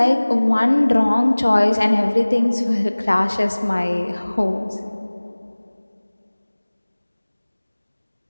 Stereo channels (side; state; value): both; inverted; correlation -1.00